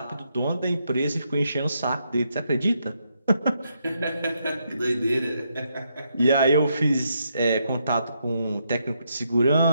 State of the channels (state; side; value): inverted; both; correlation -0.79